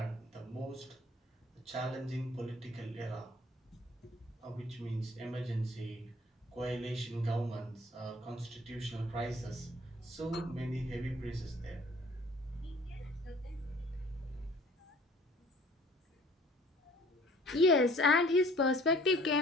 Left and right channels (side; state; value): both; normal; correlation 0.53